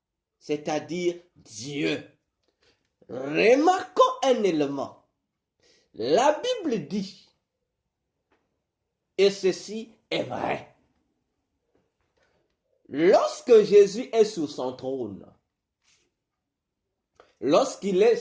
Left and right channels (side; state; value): both; identical; correlation 1.00